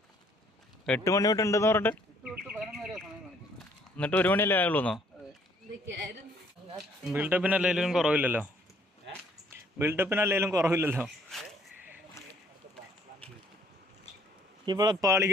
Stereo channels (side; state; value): both; normal; correlation 0.63